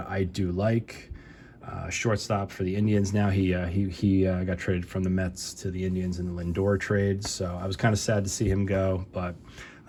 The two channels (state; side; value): identical; both; correlation 1.00